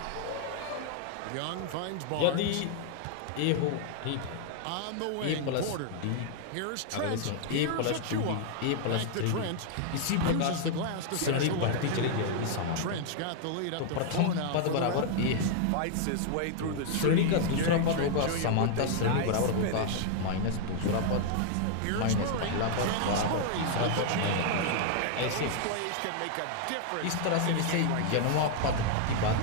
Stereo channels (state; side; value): different; both; correlation 0.00